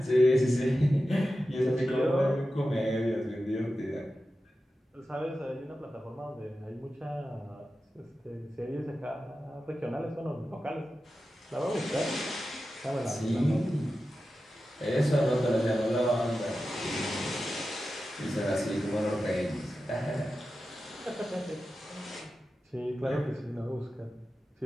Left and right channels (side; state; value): both; normal; correlation 0.92